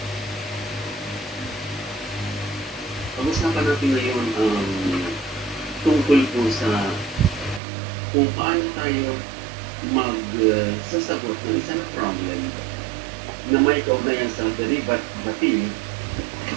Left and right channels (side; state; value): left; drops out; at 7.6 s